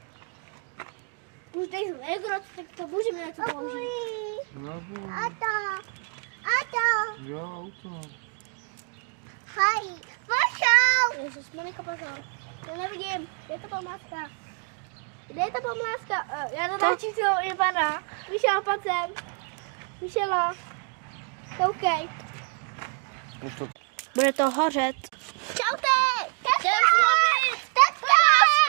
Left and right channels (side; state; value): left; quieter; 38.1 dB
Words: Už tady jsou Egrot, tak můžeme něco použít. Ato! Jo, auto. Hej, pošel! Ježiš, Monika, pozor. To nevidím. Kde je ta památka? Kde je ta památka? Já to točím celou Ivana. Vyšel, pojď sem. Vyšelo. Koukej. Bude to hořet. Čaute! Čau!